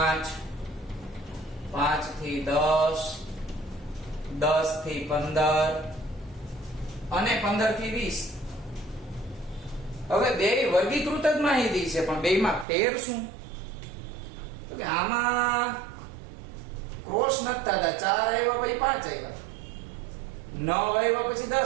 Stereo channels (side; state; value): left; drops out; at 12.7 s